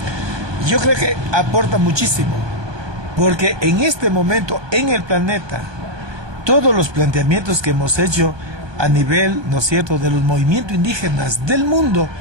Yo creo que aporta muchísimo, porque en este momento en el planeta todos los planteamientos que hemos hecho a nivel, ¿no es cierto?, de los movimientos indígenas del mundo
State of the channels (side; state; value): left; late; 1.2 ms